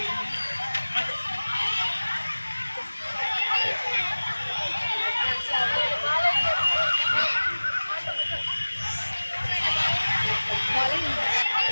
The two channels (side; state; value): both; inverted; correlation -1.00